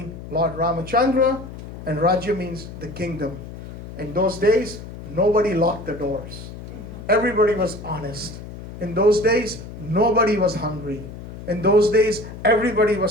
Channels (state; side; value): noise; left; hum, 12 dB below the sound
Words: Lord Ramachandra, and Rajya means the kingdom. In those days, nobody locked the doors. Everybody was honest. In those days, nobody was hungry. In those days, everybody